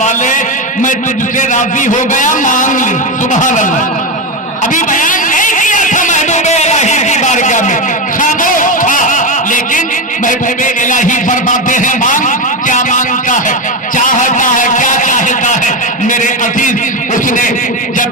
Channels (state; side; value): normal; both; correlation 0.13